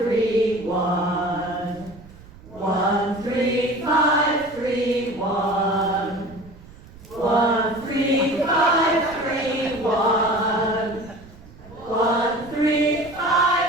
1. 1, 3, 5, 3, 1. 1, 3, 5, 3, 1. 1, 3,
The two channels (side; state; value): right; noise; rumble, 21 dB below the sound